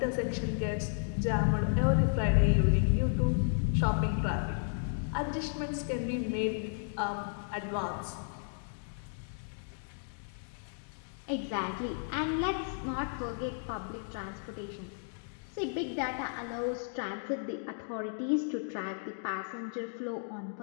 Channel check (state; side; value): silent; right; digital silence